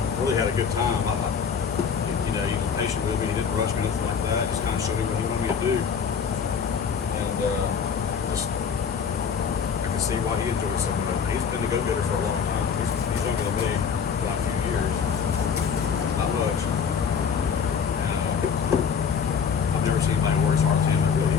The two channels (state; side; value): quieter; right; 6.6 dB